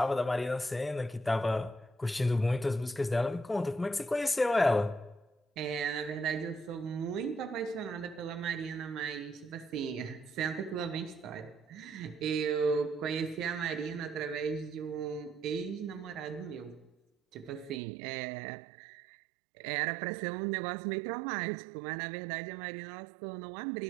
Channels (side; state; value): left; drops out; at 17.8 s